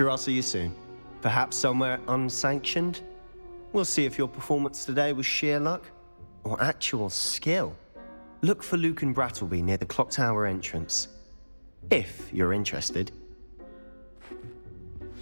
I'll see you soon. Perhaps somewhere unsanctioned? We'll see if your performance today was sheer luck, or actual skill. Look for Luke and Brattleby near the clock tower entrance, if you're interested.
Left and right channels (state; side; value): inverted; both; correlation -1.00